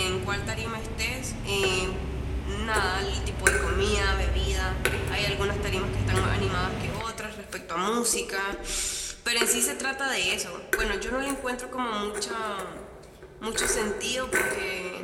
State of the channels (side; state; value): both; identical; correlation 1.00